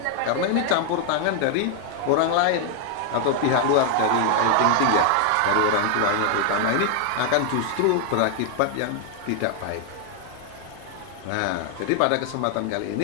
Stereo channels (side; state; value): both; different; correlation 0.00